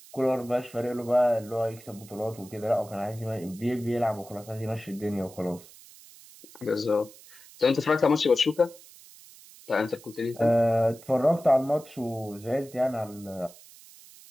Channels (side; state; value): right; noise; hiss, 21 dB below the sound